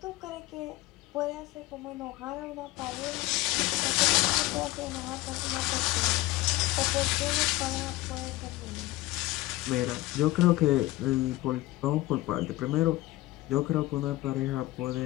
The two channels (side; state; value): right; quieter; 18.6 dB